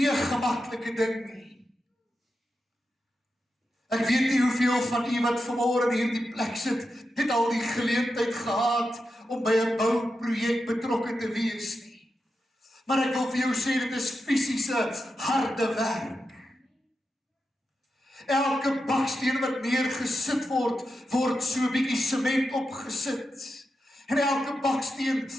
'n gemaklike ding nie. Ek weet nie hoeveel van u wat vanmôre in hierdie plek sit, het al die geleentheid gehad om by 'n bouprojek betrokke te wees nie. Maar ek wil vir jou sê, dit is fisiese, harde werk. Elke baksteen wat neergesit word so 'n bietjie sement opgesit. En elke baksteen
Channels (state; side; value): normal; both; correlation 0.88